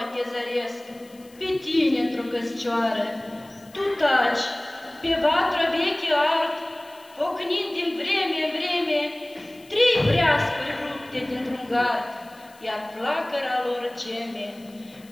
te zăresc, pe tine într-o căscioară. Tu taci, pe vatră veche ard, ocnind din vreme în vreme, 3 breascuri rupte dintr-un gard, iar flacăra lor geme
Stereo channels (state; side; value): noise; left; hiss, 26 dB below the sound